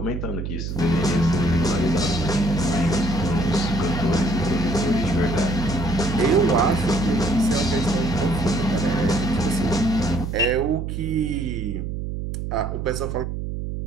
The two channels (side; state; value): right; noise; hum, 4 dB below the sound